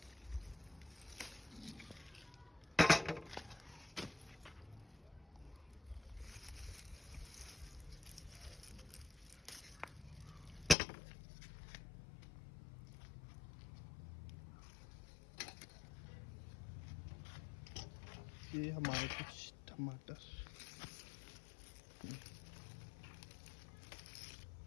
ये हमारे कुछ टमाटर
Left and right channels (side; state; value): right; drops out; at 10.8 s